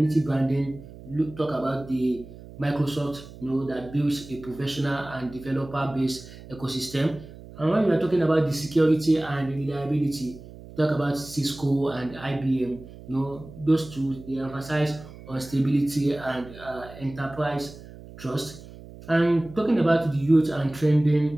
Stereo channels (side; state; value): right; noise; hum, 17 dB below the sound